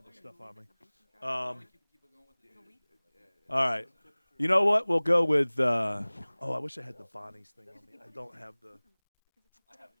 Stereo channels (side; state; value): both; inverted; correlation -1.00